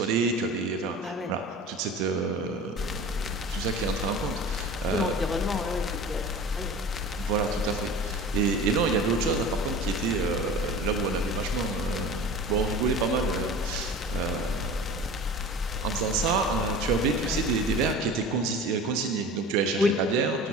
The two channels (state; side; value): normal; both; correlation 0.38